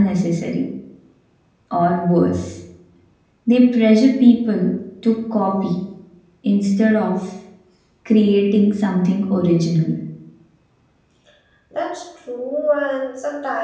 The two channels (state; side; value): identical; both; correlation 1.00